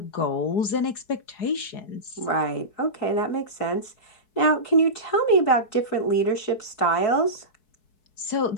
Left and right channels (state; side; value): late; right; 4.6 ms